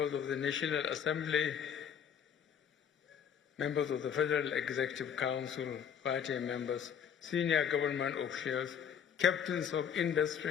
of the National Assembly, members of the Federal Executive Council, party members, senior government officials, captains of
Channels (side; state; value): right; quieter; 8.0 dB